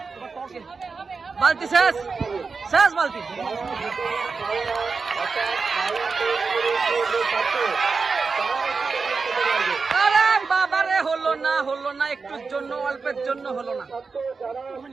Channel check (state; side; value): quieter; left; 4.7 dB